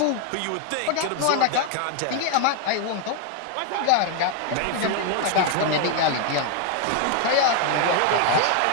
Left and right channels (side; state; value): both; different; correlation 0.00